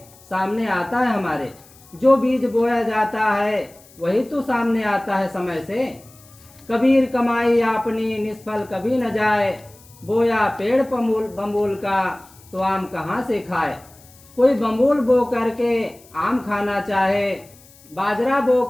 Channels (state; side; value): noise; left; hiss, 25 dB below the sound